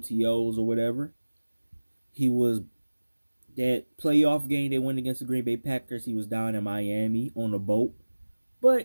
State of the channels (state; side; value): inverted; both; correlation -1.00